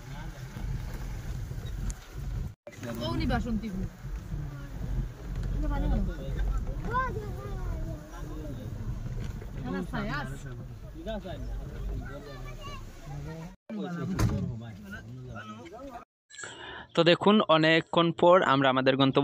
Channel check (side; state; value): both; identical; correlation 1.00